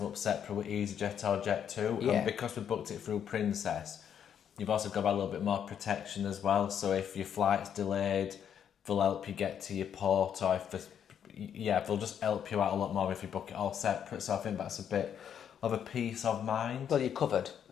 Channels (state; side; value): quieter; right; 8.7 dB